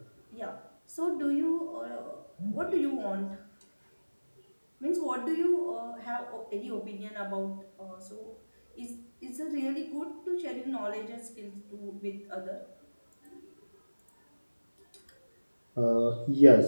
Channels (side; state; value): both; inverted; correlation -1.00